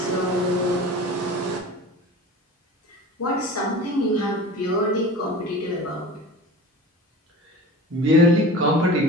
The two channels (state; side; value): normal; both; correlation 0.36